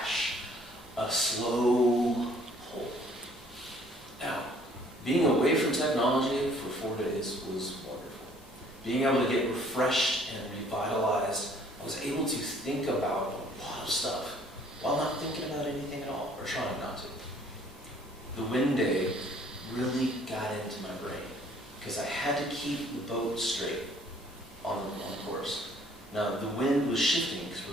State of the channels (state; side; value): normal; both; correlation 0.58